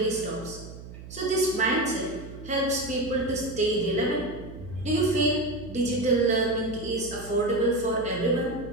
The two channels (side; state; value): right; noise; hum, 14 dB below the sound